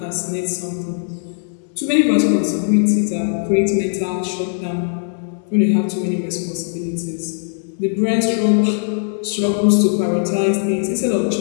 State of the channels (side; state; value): right; silent; 66 dB below the other